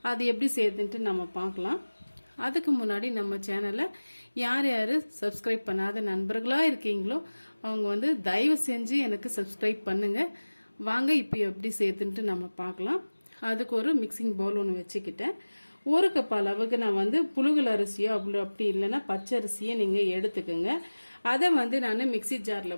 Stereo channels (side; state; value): both; inverted; correlation -1.00